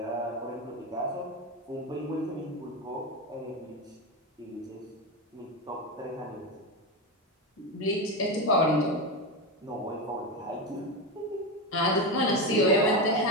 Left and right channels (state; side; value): normal; both; correlation 0.15